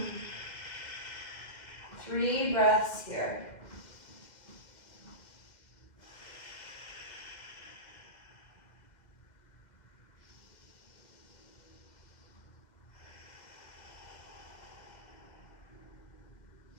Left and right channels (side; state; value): right; late; 2.1 ms